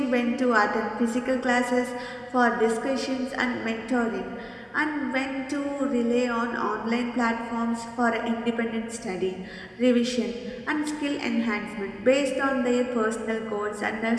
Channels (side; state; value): both; identical; correlation 1.00